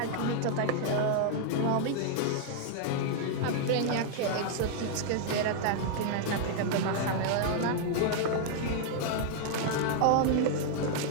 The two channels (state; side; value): different; both; correlation 0.00